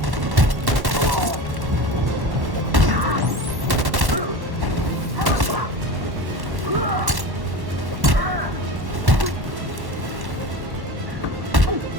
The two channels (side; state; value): left; late; 1.1 ms